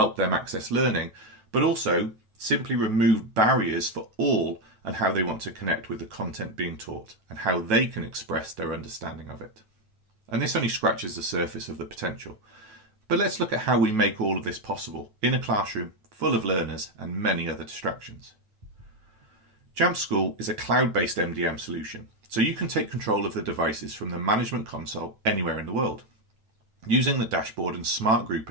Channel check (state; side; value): late; left; 9.1 ms